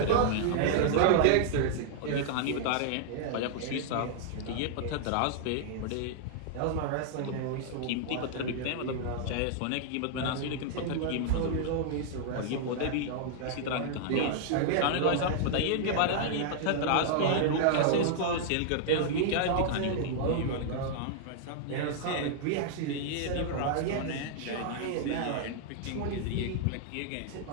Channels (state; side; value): different; both; correlation -0.01